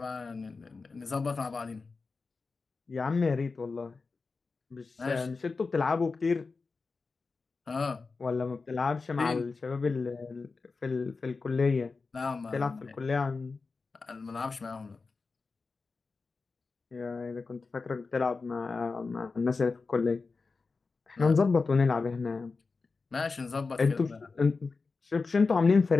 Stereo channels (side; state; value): right; quieter; 4.3 dB